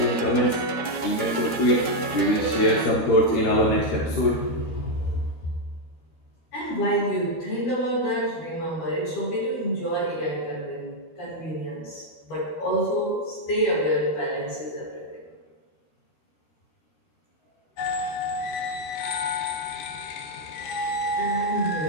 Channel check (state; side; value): late; right; 12 ms